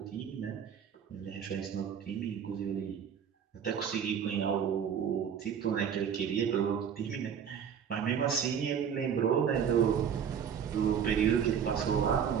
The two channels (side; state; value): left; quieter; 7.9 dB